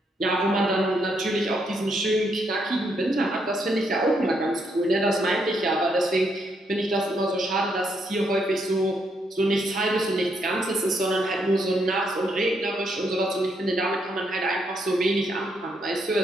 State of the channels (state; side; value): normal; both; correlation 0.76